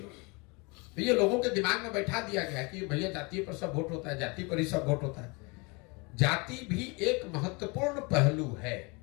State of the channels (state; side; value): quieter; right; 28.9 dB